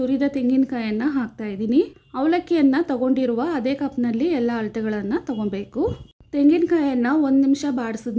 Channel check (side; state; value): both; identical; correlation 1.00